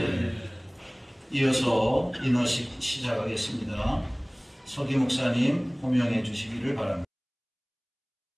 이어서 인허식 시작하겠습니다. 서기 목사님 호명해 주시기를 바랍니다.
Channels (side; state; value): both; identical; correlation 1.00